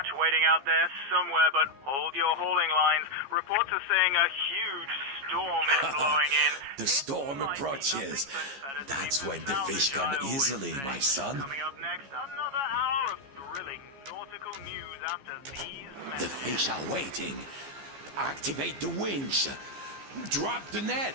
waiting out there somewhere, but hold your hauling lines. Reports are saying a huge storm is blowing in. The storm approaches. That's when the fish come easily, my son. Coming up next, another hour of thrilling nautical news after these The messages. fish are waiting. Activate the winch. Drop the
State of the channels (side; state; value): left; late; 15 ms